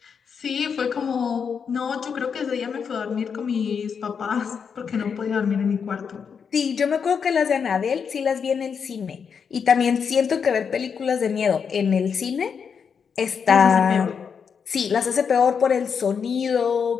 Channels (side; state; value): right; quieter; 6.5 dB